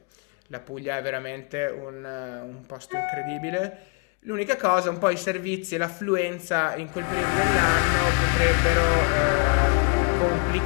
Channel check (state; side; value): quieter; right; 33.5 dB